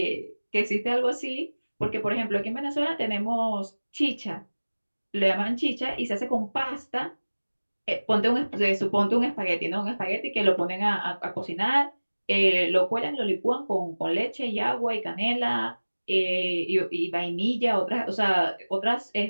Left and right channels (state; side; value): inverted; both; correlation -1.00